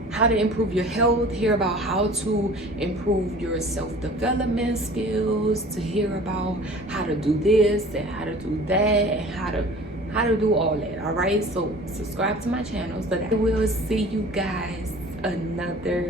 how to improve your health, hear about how to improve your self-development skills, to hear about how to do this and how to do that, and how to do all that. All right, so subscribe to my channel so that I will see you guys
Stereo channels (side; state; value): both; normal; correlation 0.44